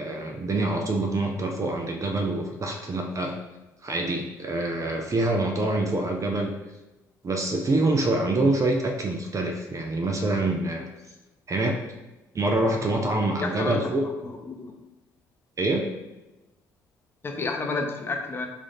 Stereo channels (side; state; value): both; normal; correlation 0.66